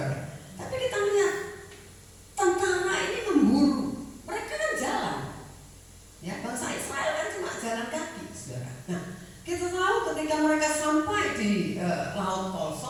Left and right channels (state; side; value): identical; both; correlation 1.00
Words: Tapi kita lihat tentara ini memburu. Mereka kan jalan. Ya, bangsa Israel kan cuma jalan kaki, saudara. Nah, kita tahu ketika mereka sampai di Laut Tol